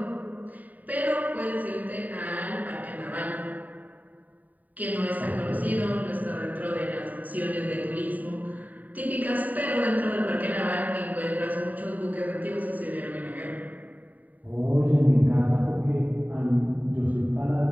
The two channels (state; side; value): late; left; 0.078 ms